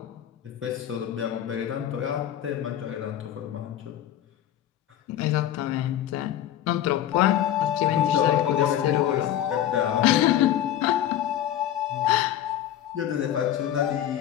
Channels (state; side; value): quieter; right; 11.4 dB